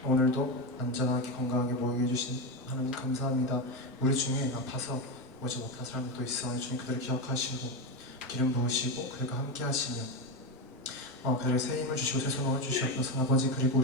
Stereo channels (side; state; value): both; normal; correlation 0.13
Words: 오늘도 안전하게 건강하게 모이게 해주신 하나님 감사합니다. 우리 중에 아파서 오지 못한 사람들도 있어. 주님 그들을 기억하시고 기름 부으시고 그들과 함께 하시며 그들에게 새 힘을 주시고 새 소망을 주시옵소서. 아버지, 그리고